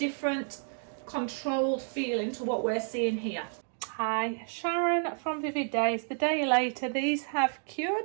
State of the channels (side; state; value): left; silent; 57 dB below the other